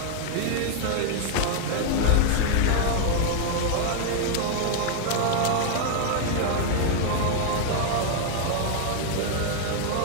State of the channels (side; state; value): both; different; correlation 0.00